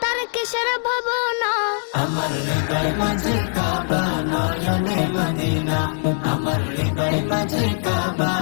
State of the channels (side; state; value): right; silent; digital silence